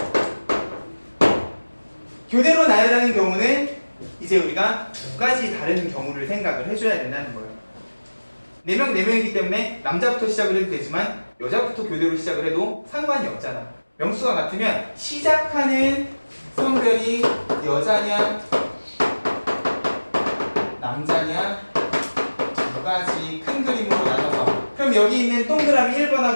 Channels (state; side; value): inverted; both; correlation -1.00